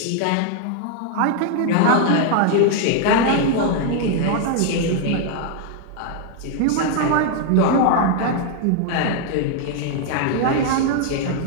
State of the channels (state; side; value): different; both; correlation 0.00